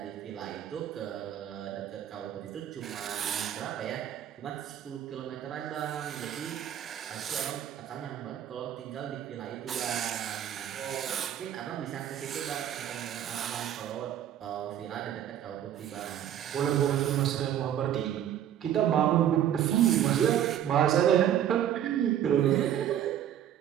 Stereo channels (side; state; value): left; quieter; 10.6 dB